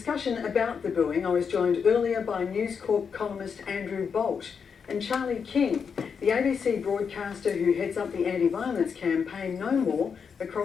about the booing, I was joined earlier by News Corp columnist Andrew Bolt and Charlie King, the ABC broadcaster who heads up the anti-violence campaign No More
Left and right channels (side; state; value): right; quieter; 6.3 dB